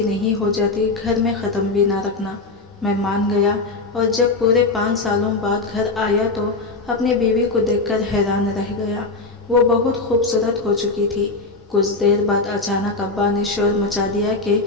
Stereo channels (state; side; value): quieter; right; 3.6 dB